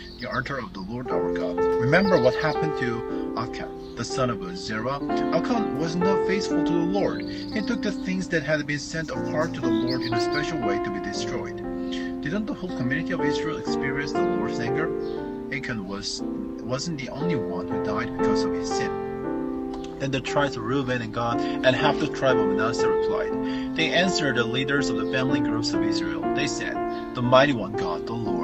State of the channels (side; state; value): both; identical; correlation 1.00